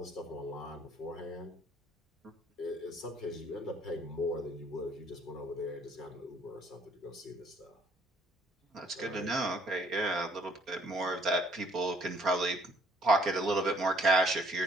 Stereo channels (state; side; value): normal; both; correlation 0.62